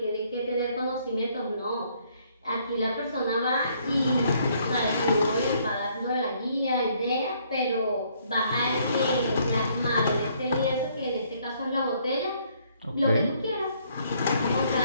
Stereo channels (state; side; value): inverted; both; correlation -0.66